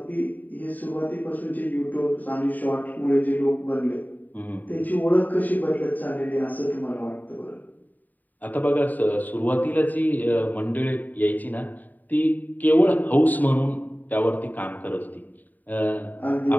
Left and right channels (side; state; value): right; late; 0.085 ms